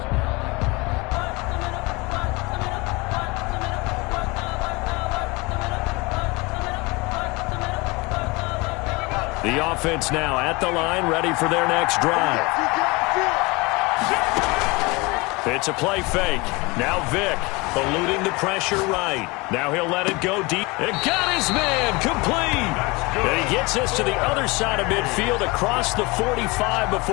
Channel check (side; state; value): right; quieter; 25.2 dB